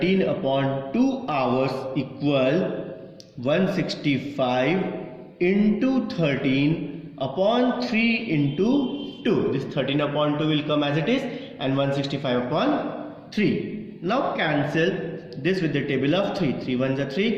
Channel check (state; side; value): identical; both; correlation 1.00